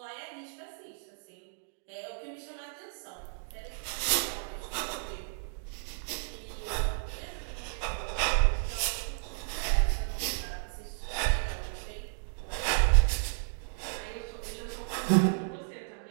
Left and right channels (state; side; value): silent; left; digital silence